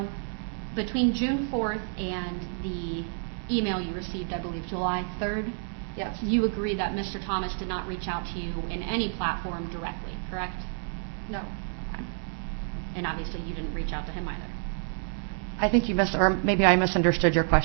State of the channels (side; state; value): left; silent; 59 dB below the other